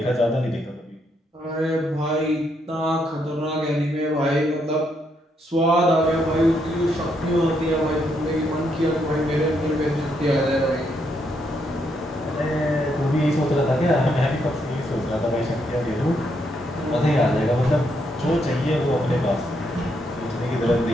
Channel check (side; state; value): both; normal; correlation 0.76